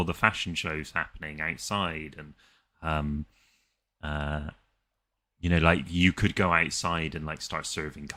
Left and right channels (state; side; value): identical; both; correlation 1.00